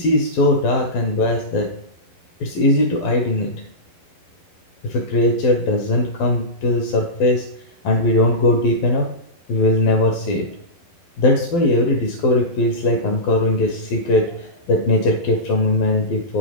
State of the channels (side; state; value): right; late; 12 ms